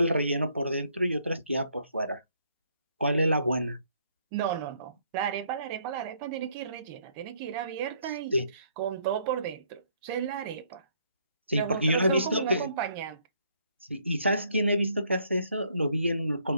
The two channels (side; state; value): both; inverted; correlation -0.67